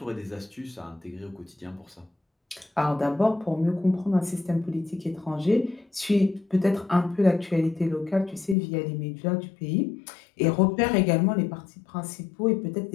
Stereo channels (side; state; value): right; drops out; at 8.6 s